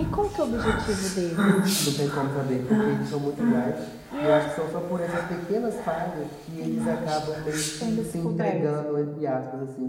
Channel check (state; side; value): identical; both; correlation 1.00